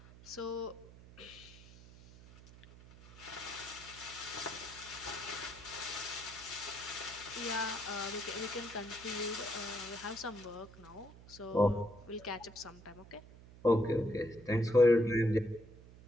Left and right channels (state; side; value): noise; right; hum, 19 dB below the sound